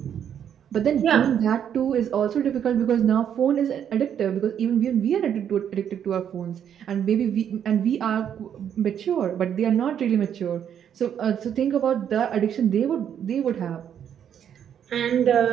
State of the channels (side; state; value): left; quieter; 9.0 dB